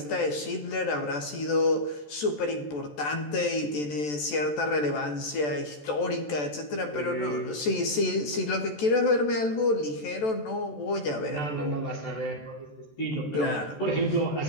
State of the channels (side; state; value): right; late; 14 ms